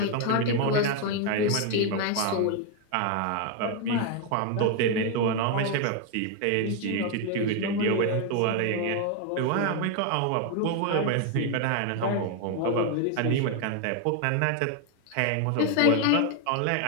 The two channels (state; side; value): different; both; correlation 0.01